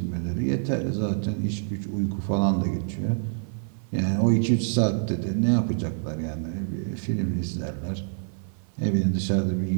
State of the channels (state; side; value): silent; left; 56 dB below the other